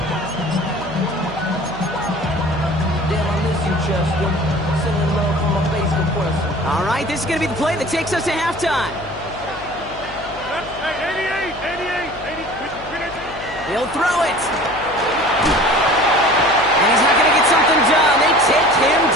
All right, this is going to be the play that takes us to halftime. Hey, 88. He'll throw it. And he's not going to get something done. They take him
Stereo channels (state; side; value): noise; left; hum, 16 dB below the sound